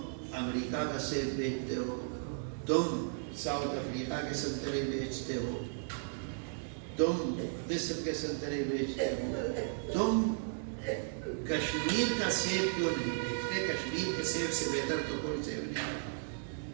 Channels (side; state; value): left; silent; digital silence